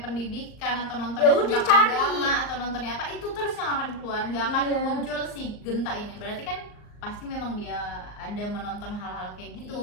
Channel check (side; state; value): right; late; 38 ms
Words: atau Ya nontonnya udah, tentang cari. agama atau nontonnya apa, itu terus yang akan keluar, nggak akan Iya. muncul si Genta ini. Berarti kan pasti memang dia ada menonton hal-hal kayak gitu.